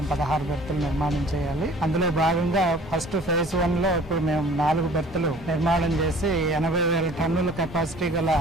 16 బెర్తులు నిర్మాణం చేయాలి. అందులో భాగంగా ఫస్ట్ ఫేజ్ 1 లో ఇప్పుడు మేము 4 బెర్తులు నిర్మాణం చేసి 80,000 టన్నుల కెపాసిటీ గల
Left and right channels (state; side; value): normal; both; correlation 0.49